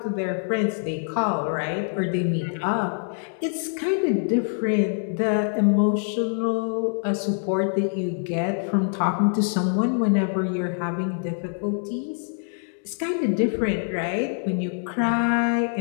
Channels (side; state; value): right; silent; 61 dB below the other